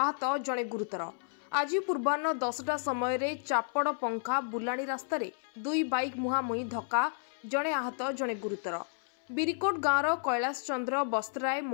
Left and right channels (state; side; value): silent; right; 57 dB below the other